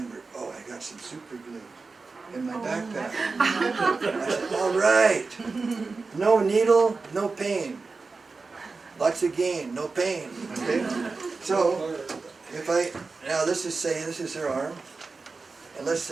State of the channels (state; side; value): quieter; left; 4.1 dB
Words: oh, I got some super glue in my backpack. I said, all right, no needle, no pain. Lots of gain, no pain, okay? So, now this is her arm, and let's